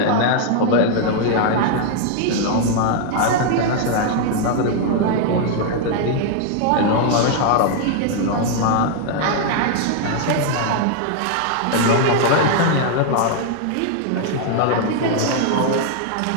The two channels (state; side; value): different; both; correlation 0.00